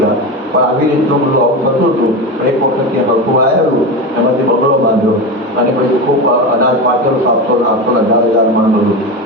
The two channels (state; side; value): normal; both; correlation 0.21